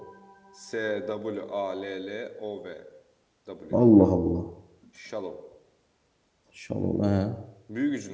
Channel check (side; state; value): both; identical; correlation 1.00